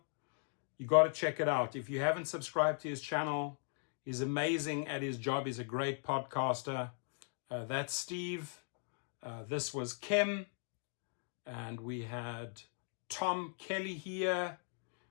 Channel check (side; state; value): right; silent; 52 dB below the other